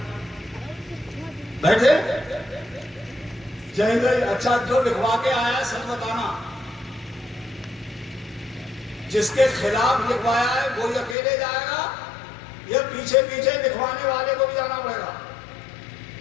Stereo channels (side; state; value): right; drops out; at 11.2 s